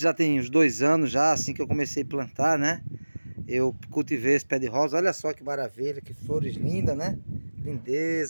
já tem uns 2 anos já, assim que eu comecei a plantar, né. Eu cultivei esse pé de rosa, olha só que maravilha, que flores lindas, né.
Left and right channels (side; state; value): both; inverted; correlation -1.00